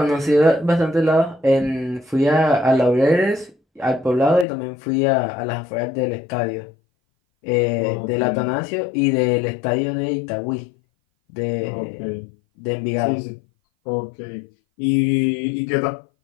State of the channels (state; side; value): drops out; right; at 4.5 s